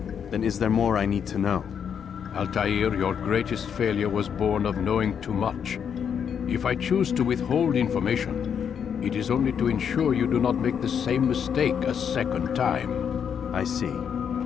Then is there more I need to know? Altair, your greatest failure was born of knowing too much. If I choose to withhold information, it is only to ensure you do not make the same mistake a second time. I see.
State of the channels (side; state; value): right; quieter; 7.7 dB